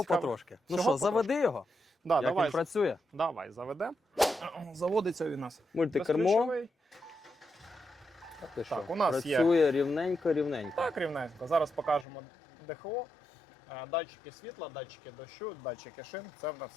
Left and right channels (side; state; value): right; drops out; at 12.1 s